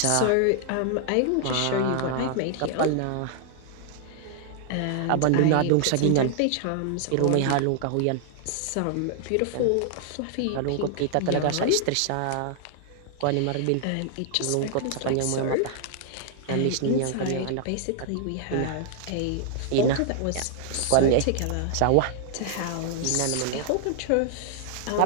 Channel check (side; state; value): both; different; correlation 0.00